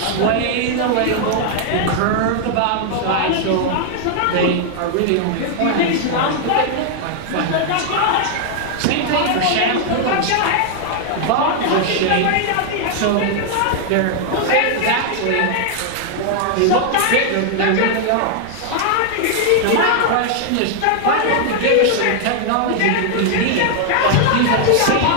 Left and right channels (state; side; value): different; both; correlation 0.00